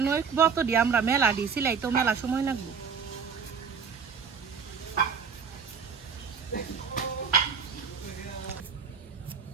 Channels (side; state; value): left; quieter; 6.2 dB